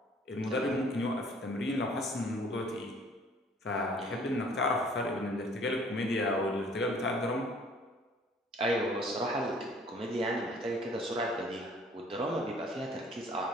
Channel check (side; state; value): both; normal; correlation 0.56